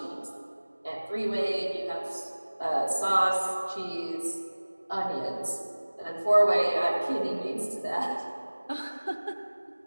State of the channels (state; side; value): inverted; both; correlation -1.00